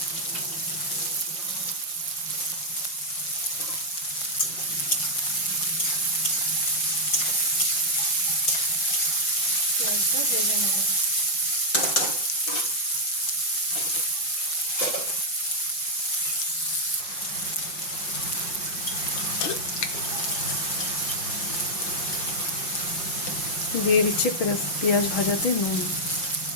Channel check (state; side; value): late; right; 5.7 ms